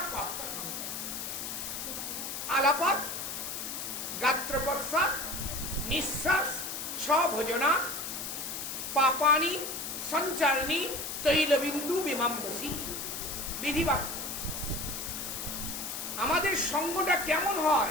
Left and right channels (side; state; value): left; noise; hiss, 5 dB below the sound